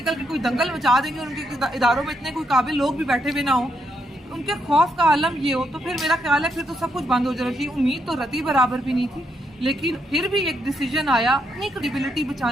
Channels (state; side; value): normal; both; correlation 0.78